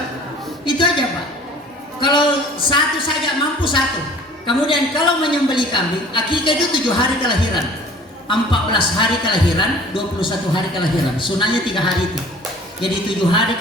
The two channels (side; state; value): both; normal; correlation 0.48